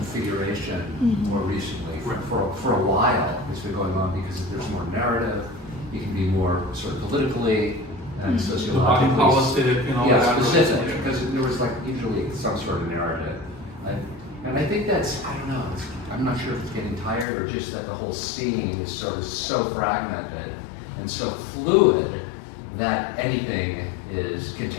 figuration more recently. For a while, it's been going on because there's more narrative, you can be more sort of politically and sociologically. Body politic and all that. Specific, because there was like usually some sort of narrative. And I think that's, I don't know, I'm not sure if it's getting tired or just that the whole scene is sort of so fragmented and so fluid that anything can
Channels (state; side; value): drops out; right; at 17.2 s